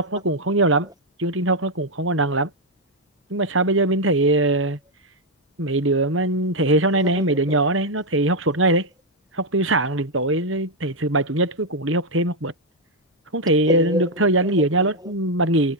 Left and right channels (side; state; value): both; normal; correlation 0.01